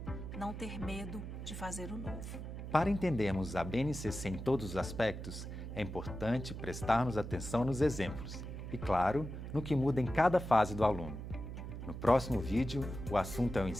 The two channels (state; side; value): noise; right; hum, 8 dB below the sound